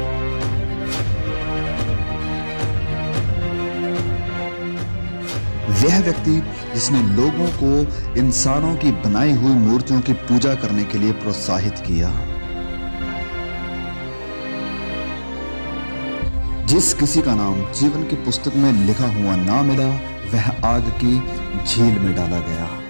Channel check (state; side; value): inverted; both; correlation -1.00